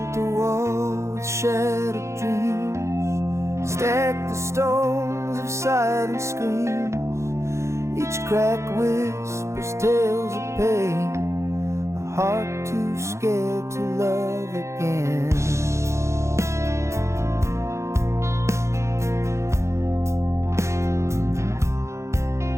a wall with shattered dreams, stacked the stones of silent screams. Each crack whispers tales of pain, a heart too scared to love again.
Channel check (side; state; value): left; late; 0.14 ms